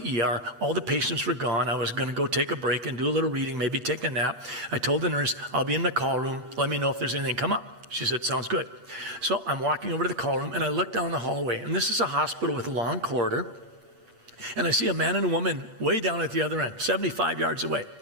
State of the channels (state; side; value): late; left; 8.0 ms